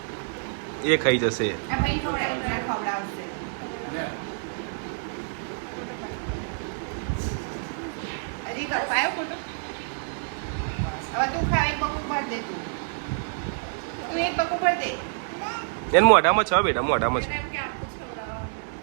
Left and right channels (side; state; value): left; silent; digital silence